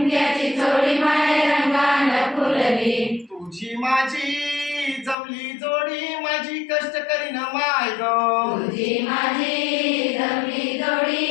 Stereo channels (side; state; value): right; drops out; at 5.2 s